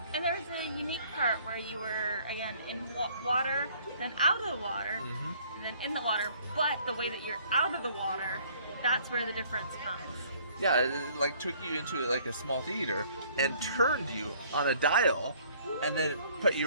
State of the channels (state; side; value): inverted; both; correlation -0.58